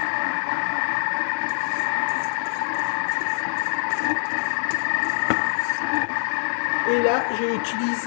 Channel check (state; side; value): silent; right; digital silence